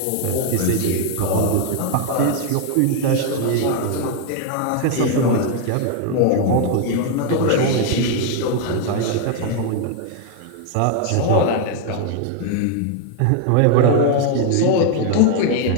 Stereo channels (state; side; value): different; both; correlation 0.00